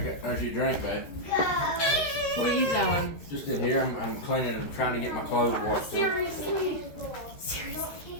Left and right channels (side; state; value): right; late; 13 ms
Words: There's your drink, bud. What are you doing? Just in here, I'm cleaning and trying to get my clothes washed. Seriously.